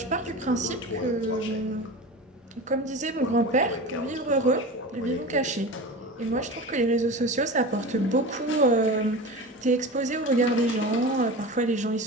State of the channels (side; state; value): both; normal; correlation 0.30